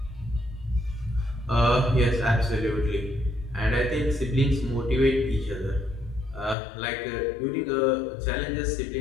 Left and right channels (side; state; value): right; drops out; at 6.6 s